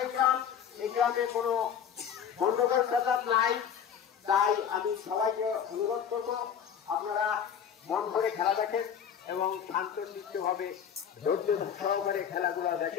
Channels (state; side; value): quieter; right; 8.2 dB